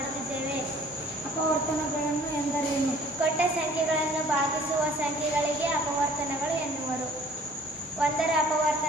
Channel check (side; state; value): both; normal; correlation 0.53